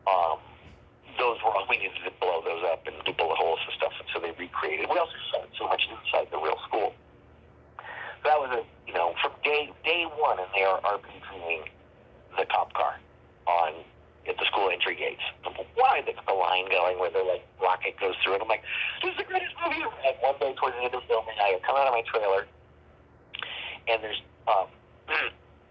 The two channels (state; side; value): identical; both; correlation 1.00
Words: Those were all, we needed to blow those up and do bullet holes and stuff, and so they recreated. We also shot so much inside the real school. So that was from day one, and they are RPGing the cop car at the school entry gates. Why the line going where the rocket goes through it? I'm like, this is the greatest movie ever. And one day towards the end of filming, I come out of my trailer, and there's